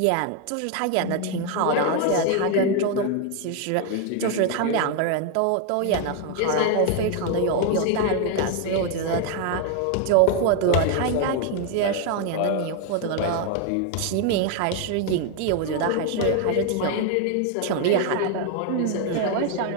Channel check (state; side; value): different; both; correlation 0.01